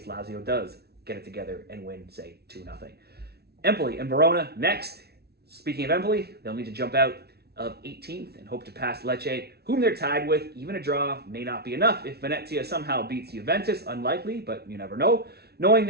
Lazio does get it together and win, say, 2-0. Empoli and Verona next. Speaking of Empoli, they'll need to jump out of 18th and hope to pass Lecce, whom they're tied with. Even a draw may not be enough if Venezia somehow beats Juventus. Unlikely, but you never know. Knowing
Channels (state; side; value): late; left; 0.47 ms